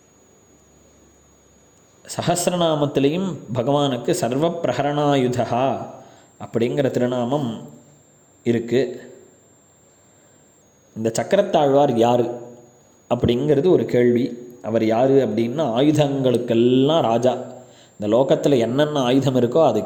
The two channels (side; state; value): both; identical; correlation 1.00